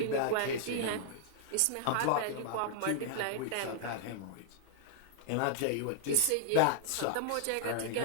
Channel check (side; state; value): both; different; correlation -0.01